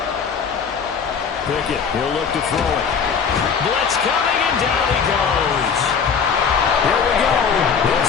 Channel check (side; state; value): right; quieter; 6.3 dB